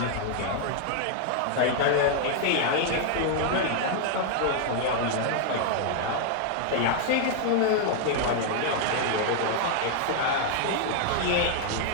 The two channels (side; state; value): both; different; correlation 0.00